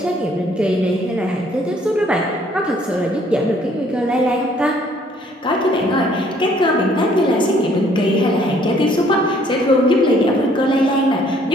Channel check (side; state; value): both; normal; correlation 0.62